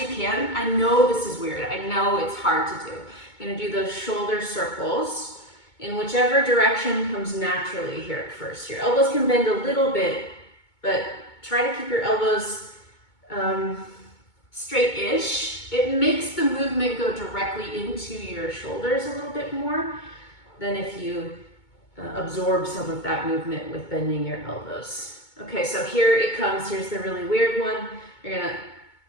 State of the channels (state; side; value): late; right; 2.2 ms